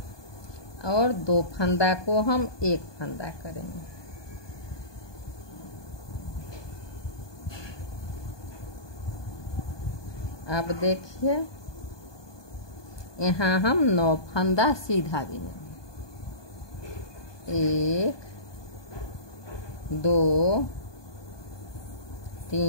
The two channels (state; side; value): late; right; 1.2 ms